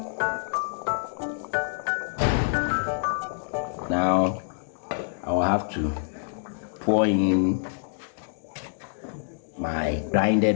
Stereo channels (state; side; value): silent; right; digital silence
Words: Now I will have to pour in my